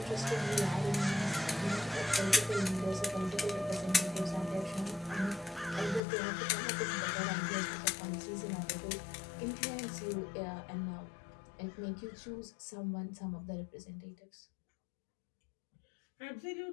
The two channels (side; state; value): right; drops out; at 6.0 s